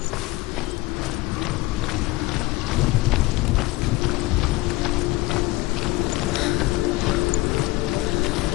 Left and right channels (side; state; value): right; quieter; 19.6 dB